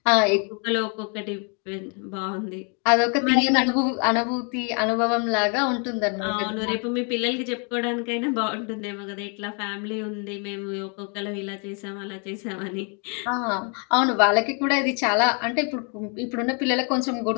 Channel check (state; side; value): quieter; right; 37.3 dB